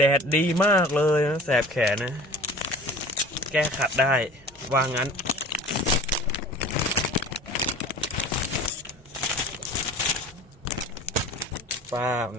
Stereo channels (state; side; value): normal; both; correlation 0.42